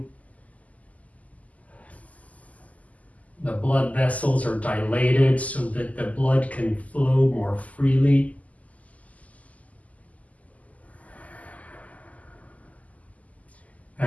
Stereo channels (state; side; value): late; right; 0.073 ms